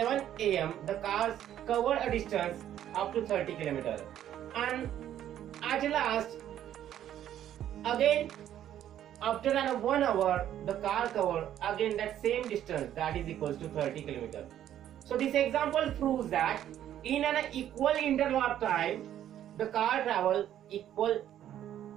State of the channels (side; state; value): left; quieter; 11.2 dB